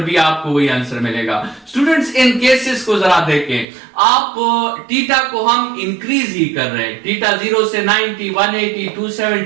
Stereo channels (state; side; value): drops out; left; at 3.7 s